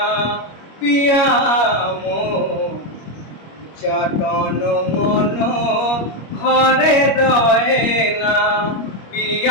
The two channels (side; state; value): right; late; 25 ms